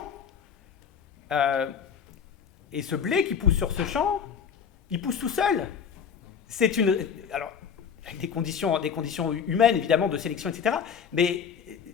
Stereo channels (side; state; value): right; quieter; 7.1 dB